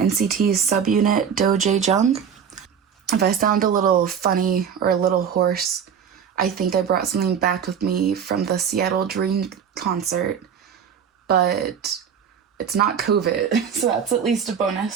subunit DoJaeJung. If I sound a little funny or a little hoarse, I think I brought something back with me from the Seattle Dream concert, but it's not COVID, so that's at least a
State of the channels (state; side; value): quieter; left; 7.6 dB